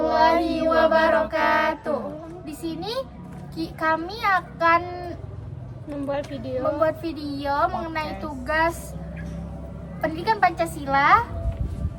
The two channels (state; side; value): identical; both; correlation 1.00